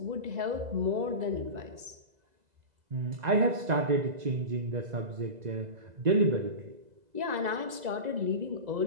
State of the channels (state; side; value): late; left; 2.0 ms